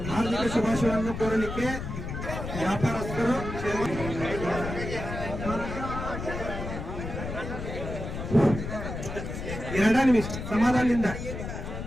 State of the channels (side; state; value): left; noise; rumble, 6 dB below the sound